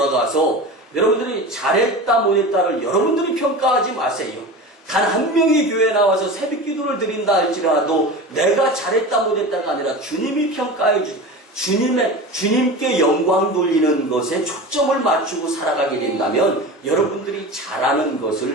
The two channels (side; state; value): both; normal; correlation 0.30